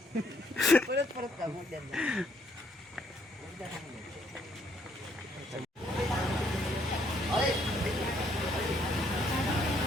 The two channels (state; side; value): normal; both; correlation 0.69